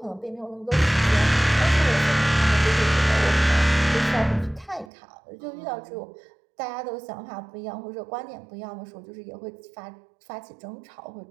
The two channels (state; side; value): drops out; left; at 4.9 s